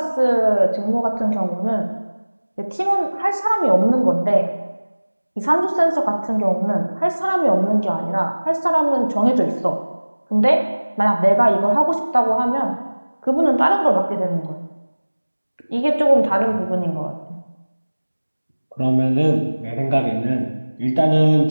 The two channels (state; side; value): inverted; both; correlation -1.00